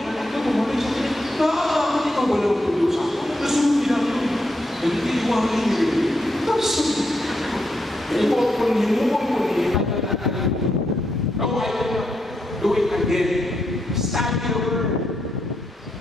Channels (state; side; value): normal; both; correlation 0.81